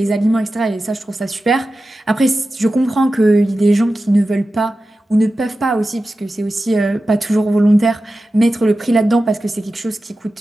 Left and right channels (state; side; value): normal; both; correlation 0.93